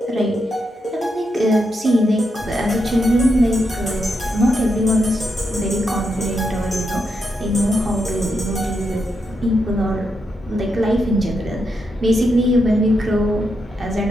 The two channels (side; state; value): both; normal; correlation 0.83